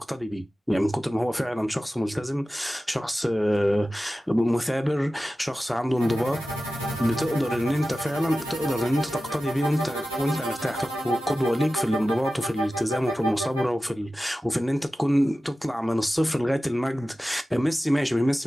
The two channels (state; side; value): normal; both; correlation 0.95